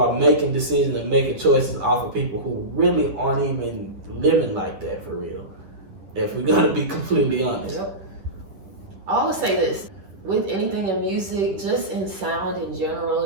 making decisions and making choices off of people who really aren't even living like that for real. If we're gonna be completely honest. Yep. I always say this, with anything in music, just in sound in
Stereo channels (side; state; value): left; late; 10 ms